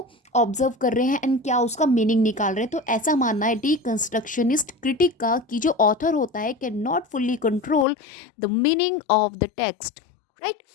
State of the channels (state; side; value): drops out; right; at 7.9 s